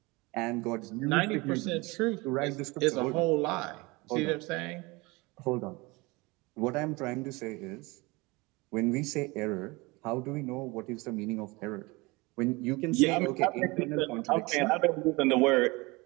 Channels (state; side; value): quieter; left; 24.4 dB